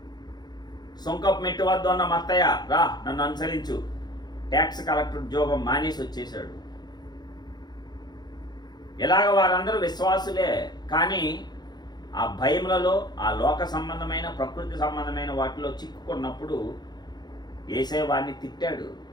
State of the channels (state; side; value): late; right; 0.20 ms